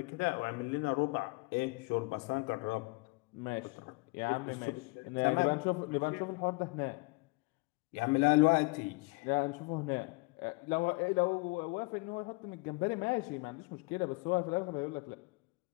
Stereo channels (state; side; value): quieter; right; 27.1 dB